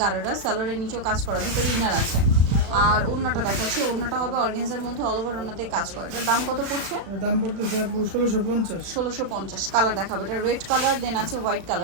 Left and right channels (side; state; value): left; late; 36 ms